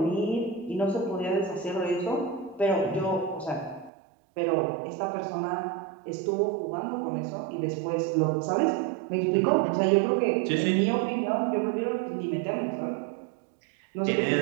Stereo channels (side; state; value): left; drops out; at 3.9 s